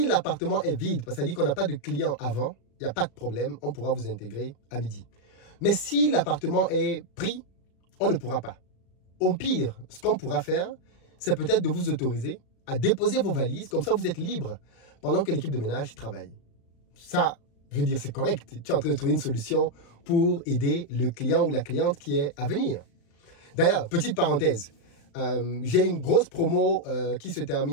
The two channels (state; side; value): late; right; 36 ms